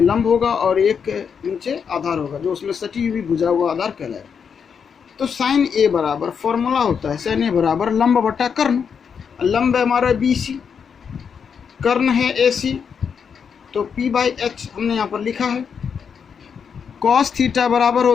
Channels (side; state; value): right; quieter; 6.7 dB